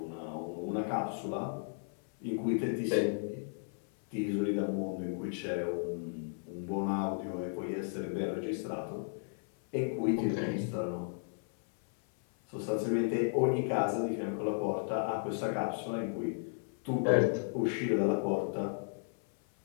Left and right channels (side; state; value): right; silent; 55 dB below the other